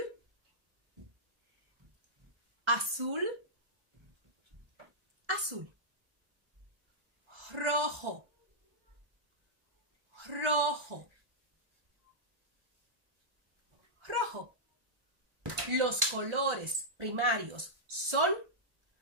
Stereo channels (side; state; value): left; late; 1.4 ms